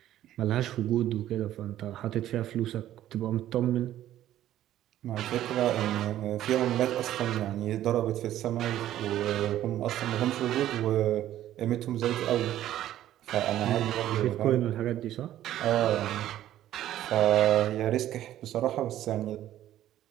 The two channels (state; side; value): quieter; left; 12.8 dB